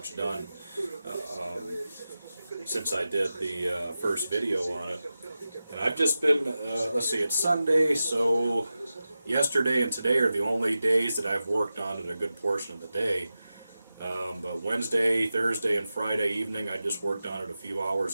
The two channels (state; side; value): inverted; both; correlation -0.93